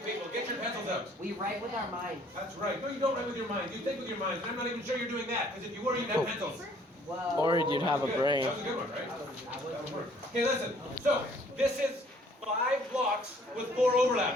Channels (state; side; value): normal; both; correlation 0.59